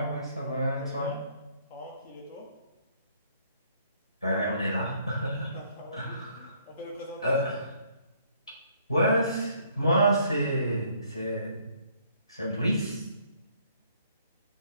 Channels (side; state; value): both; inverted; correlation -0.64